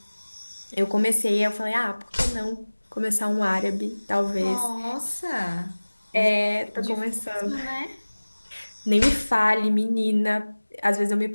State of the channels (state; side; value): inverted; both; correlation -1.00